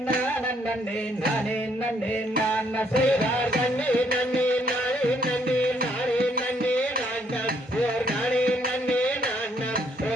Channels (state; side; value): normal; both; correlation 0.68